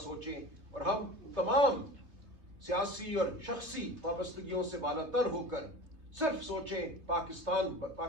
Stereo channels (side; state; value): left; late; 3.3 ms